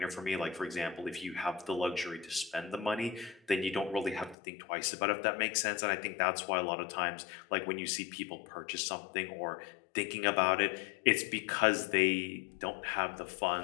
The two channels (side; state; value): right; drops out; at 4.4 s